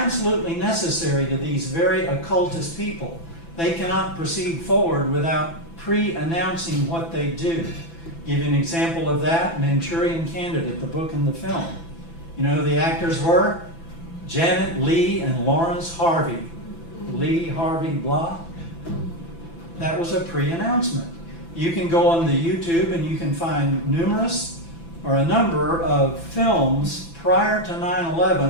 necessary to these very occultist people. They cannot proceed forward without pre-announcing what they do. Give you an example of that, Manchurian Candidate, the book and the film. You know who the actors were? Janet Leigh and Lawrence Harvey. Lee Harvey blah. That was a pre-announcement. You can go on the YouTube and you can find numerous or a number of films prior to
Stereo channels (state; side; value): late; right; 6.0 ms